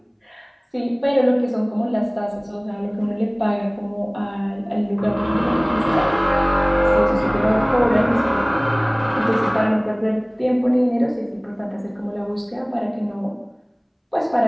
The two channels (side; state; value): both; identical; correlation 1.00